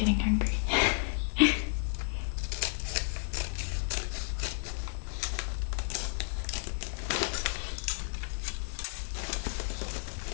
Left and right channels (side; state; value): right; silent; digital silence